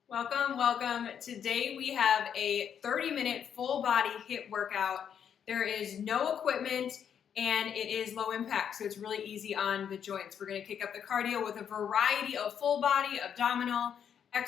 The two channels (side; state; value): right; quieter; 8.3 dB